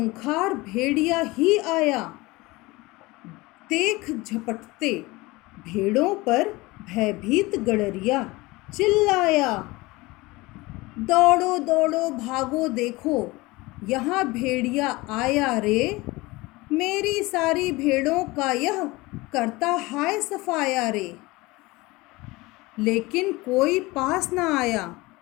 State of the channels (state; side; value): quieter; right; 21.9 dB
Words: भेड़िया ही आया। देख झपटते भेड़ों पर भयभीत गड़रिया चिल्लाया, दौड़ो दौड़ो भागो देखो यहाँ भेड़िया आया रे। मेरी सारी भेड़ों का यह करता हाय सफाया रे। लेकिन कोई पास न आया,